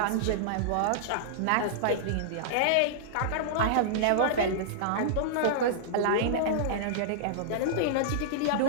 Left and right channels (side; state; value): both; different; correlation -0.02